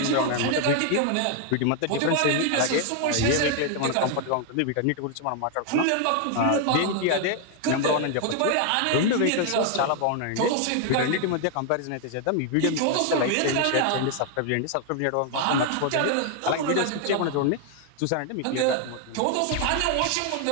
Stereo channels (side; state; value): both; different; correlation 0.00